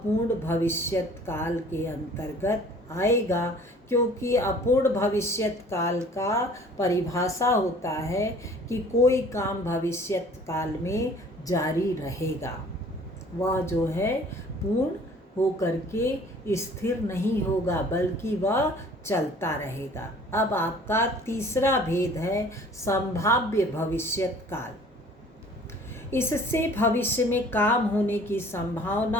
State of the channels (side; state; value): both; normal; correlation 0.51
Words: भविष्यत काल के अंतर्गत आएगा, क्योंकि अपूर्ण भविष्यत काल का परिभाषा होता है कि कोई काम भविष्यत काल में जारी रहेगा, वह जो है पूर्ण हो करके स्थिर नहीं होगा, बल्कि वह चलता रहेगा। अब आपका तीसरा भेद है संभाव्य भविष्यत काल। इससे भविष्य में काम होने की